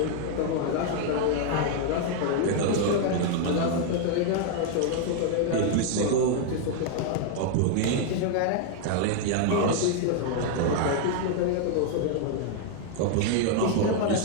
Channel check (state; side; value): different; both; correlation 0.00